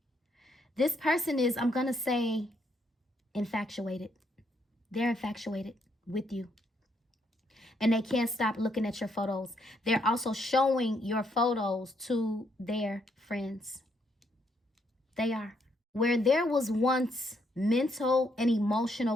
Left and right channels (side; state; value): both; normal; correlation 0.74